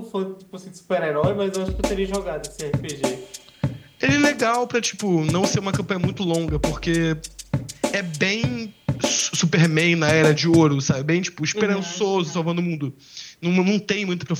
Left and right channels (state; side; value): identical; both; correlation 1.00